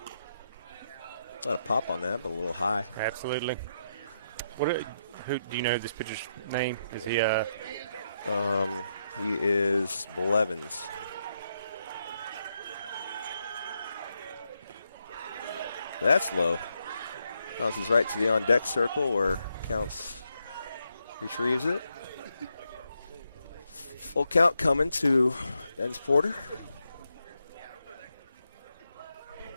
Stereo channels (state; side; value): inverted; both; correlation -0.81